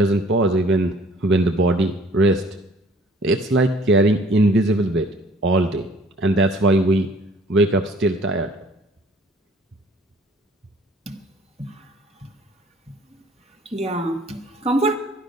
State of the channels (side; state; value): both; normal; correlation 0.55